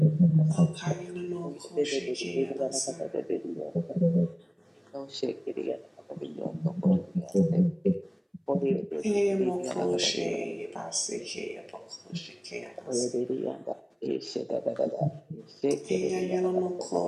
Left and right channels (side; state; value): both; identical; correlation 1.00